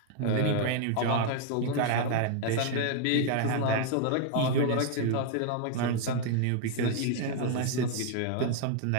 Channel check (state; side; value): different; both; correlation 0.00